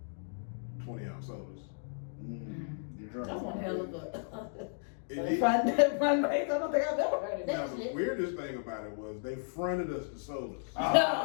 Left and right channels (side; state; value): right; silent; digital silence